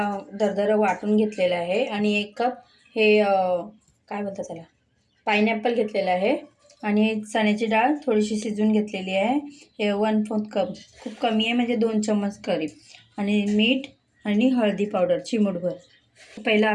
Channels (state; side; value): identical; both; correlation 1.00